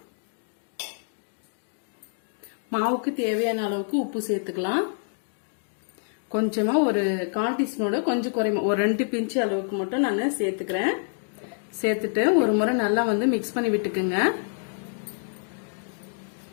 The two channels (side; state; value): right; silent; digital silence